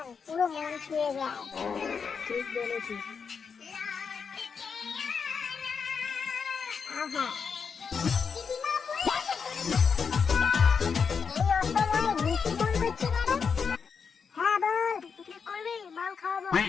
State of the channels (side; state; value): right; quieter; 6.0 dB